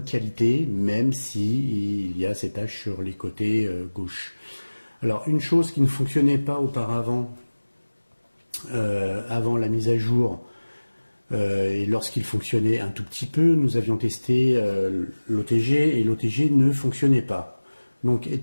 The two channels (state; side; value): inverted; both; correlation -1.00